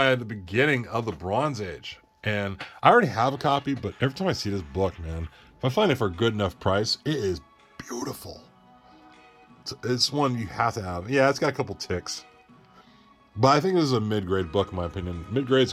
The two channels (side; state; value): both; identical; correlation 1.00